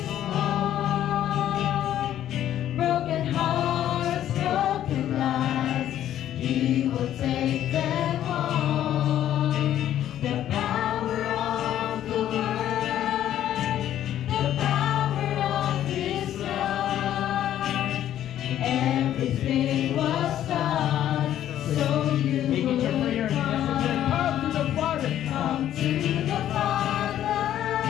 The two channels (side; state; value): right; quieter; 11.6 dB